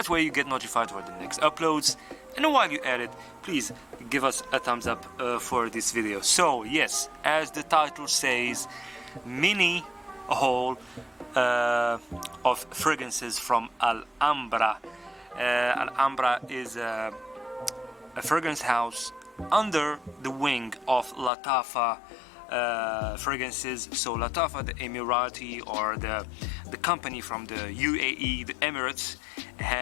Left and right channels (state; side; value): drops out; right; at 21.3 s